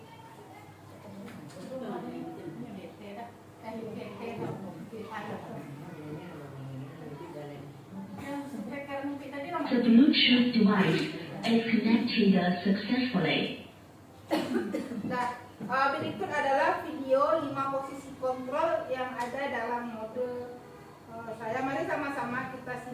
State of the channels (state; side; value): identical; both; correlation 1.00